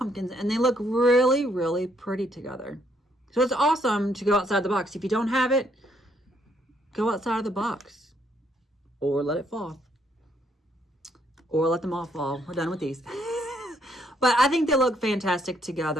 and they look really, really pretty together. So it's awesome to go outside the box. If you don't have it, go outside of the box or let it fall, or let them all fall. We're done with these. But I think they look fantastic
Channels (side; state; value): both; normal; correlation 0.71